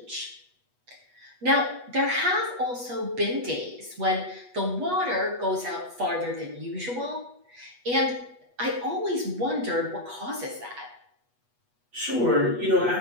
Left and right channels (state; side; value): late; left; 8.2 ms